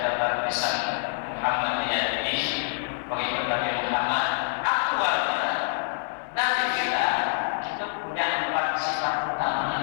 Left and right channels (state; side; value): silent; right; digital silence